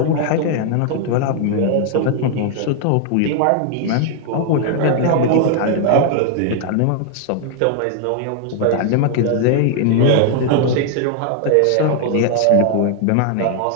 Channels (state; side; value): different; both; correlation 0.00